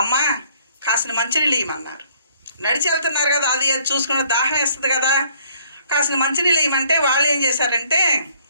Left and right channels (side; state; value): both; inverted; correlation -0.62